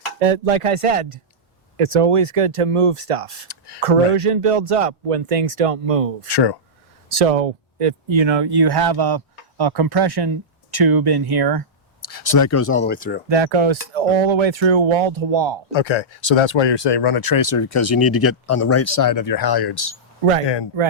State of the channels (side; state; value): both; normal; correlation -0.13